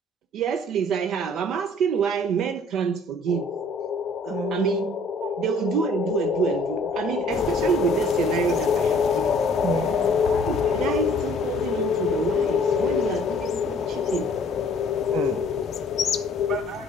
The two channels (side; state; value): both; normal; correlation 0.55